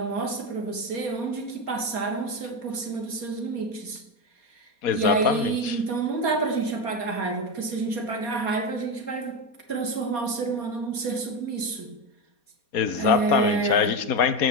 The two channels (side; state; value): right; late; 4.2 ms